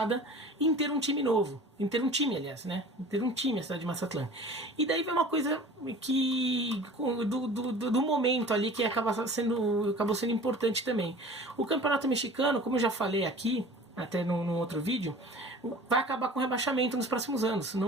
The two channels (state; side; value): normal; both; correlation 0.43